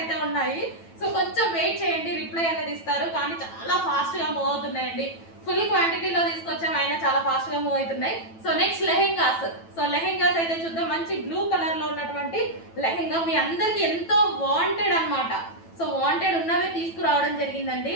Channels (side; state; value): right; late; 9.1 ms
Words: ఉన్నాయి. సో కొంచెం వెయిట్ చేయండి, రిప్లై అనేది ఇస్తారు. కానీ చాలా ఫాస్ట్ గా మూవ్ అవుతున్నాయండి. ఫుల్ క్వాంటిటీలో తీసుకొచ్చాం, అయినా చాలా ఫాస్ట్ గా మూవ్ అవుతున్నాయి. So next lehengas. So lehengas అయితే చూద్దాం. మంచి బ్లూ కలర్ లో ఉన్నటువంటి లెహెంగా మీ అందరికి ఎంతో వాంటెడ్ అన్నమాట. సో వాంటెడ్ ఉన్నవే తీసుకురావడం జరిగిందండి.